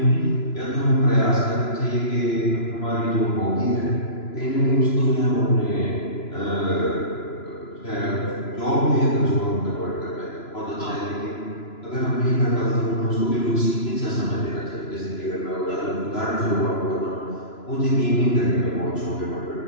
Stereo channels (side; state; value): right; late; 3.0 ms